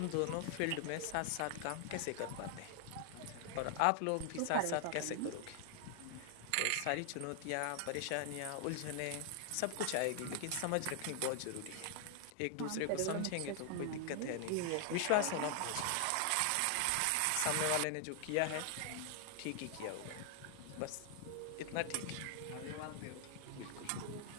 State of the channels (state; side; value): different; both; correlation 0.00